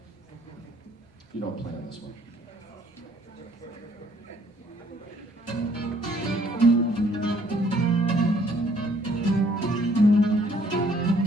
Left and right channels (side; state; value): both; normal; correlation 0.63